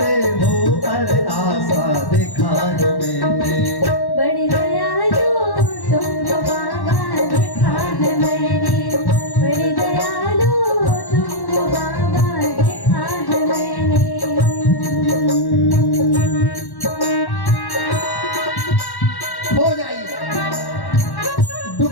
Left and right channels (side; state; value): right; late; 1.1 ms